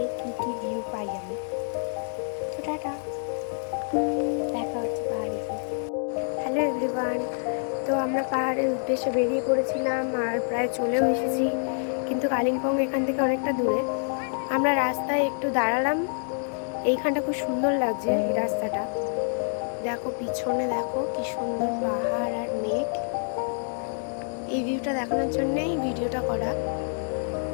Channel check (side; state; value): right; silent; 60 dB below the other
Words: কী কী ভিউ পাই আমি। তো টাটা, দেখা হচ্ছে পাহাড়ে গিয়ে। হ্যালো এভরিওয়ান, তো আমরা পাহাড়ের উদ্দেশ্যে বেরিয়ে পড়েছিলাম আর প্রায় চলেও এসেছি, কিন্তু কালিম্পং এখান থেকে অনেকটা দূরে। আমরা রাস্তায় একটু দাঁড়ালাম, এইখানটা খুব সুন্দর লাগছে এই রাস্তাটা। দেখো পিছনে, দেখো কি সুন্দর পাহাড় আর মেঘ। এই ভিউটা দেখানোর জন্যই ভিডিওটা করা।